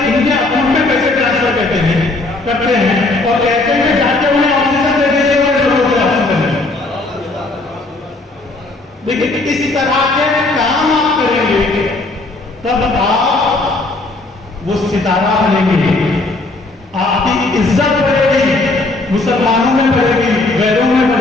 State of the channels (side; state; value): right; quieter; 3.1 dB